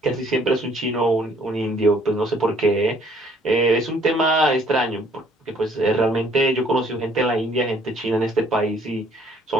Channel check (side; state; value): both; normal; correlation 0.61